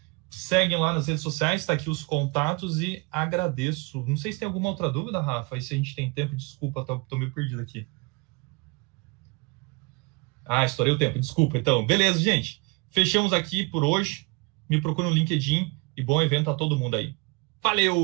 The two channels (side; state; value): left; quieter; 28.9 dB